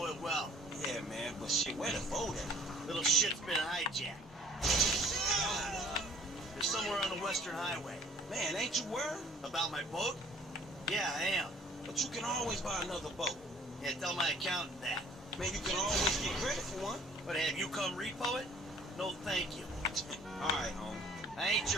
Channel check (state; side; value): normal; both; correlation 0.54